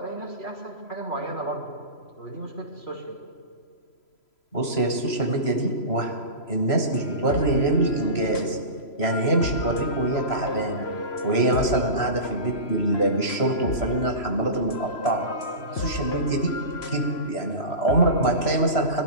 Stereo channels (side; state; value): right; late; 3.0 ms